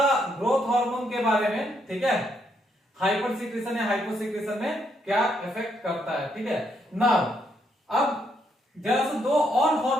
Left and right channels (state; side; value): normal; both; correlation 0.75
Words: ग्रोथ हार्मोन के बारे में, ठीक है, हाइपरसिक्रेशन या हाइपोसिक्रेशन में क्या इफेक्ट करता है, ठीक है। नाउ अब जरा से दो और